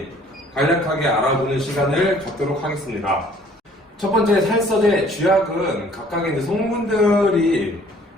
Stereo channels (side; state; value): both; normal; correlation 0.56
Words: 간략하게 알아보는 시간을 갖도록 하겠습니다. 첫 번째 살서제 쥐약은 각각의 이제 성분들이